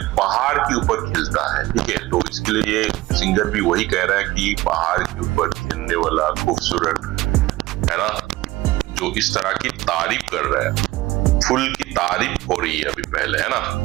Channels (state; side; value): quieter; left; 18.0 dB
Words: पहाड़ के ऊपर खिलता है, ठीक है। तो इसके लिए ये सिंगर भी वही कह रहा है कि पहाड़ के ऊपर खिलने वाला खूबसूरत है ना, जो इस तरह की तारीफ कर रहा है। फुल की तारीफ हो रही है अभी पहले, है ना।